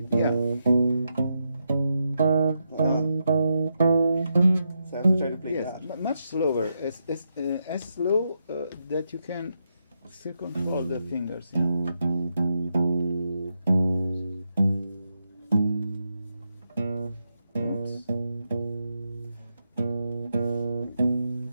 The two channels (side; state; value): both; inverted; correlation -0.84